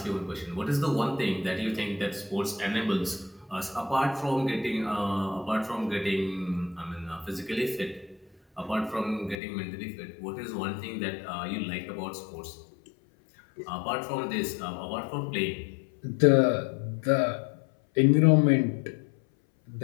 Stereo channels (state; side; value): drops out; right; at 9.3 s